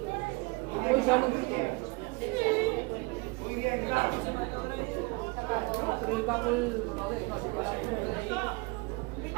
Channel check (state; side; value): quieter; left; 27.9 dB